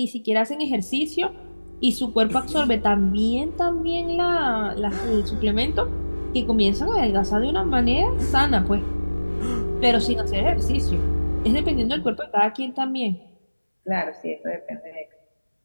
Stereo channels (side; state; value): both; inverted; correlation -1.00